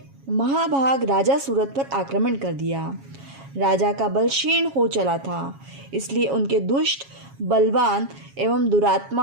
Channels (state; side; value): late; left; 7.3 ms